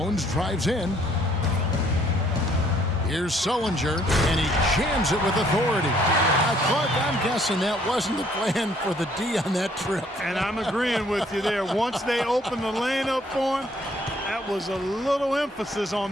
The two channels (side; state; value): both; normal; correlation 0.63